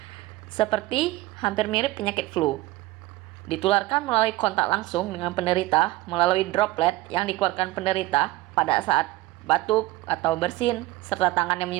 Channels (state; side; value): quieter; left; 18.4 dB